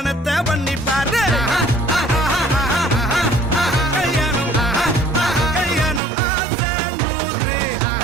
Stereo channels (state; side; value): drops out; left; at 6.0 s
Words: பண்ணி பாரு கல்யாணம் கல்யாணம் ஆசை நூறு